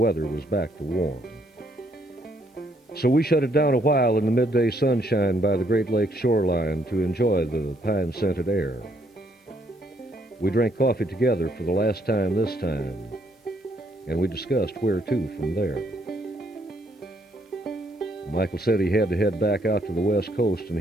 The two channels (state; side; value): normal; both; correlation 0.71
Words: was back to warm. So we shut it down a while in the midday sunshine by the Great Lakes shoreline to enjoy the pine-scented air. We drank coffee together for the last time this time, and we discussed where to from there. Michael said he had to head back out to the west coast, and